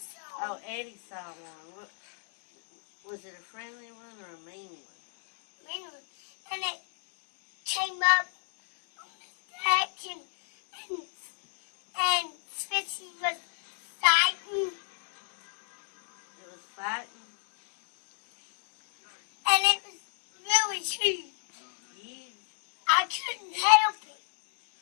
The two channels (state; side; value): silent; right; 56 dB below the other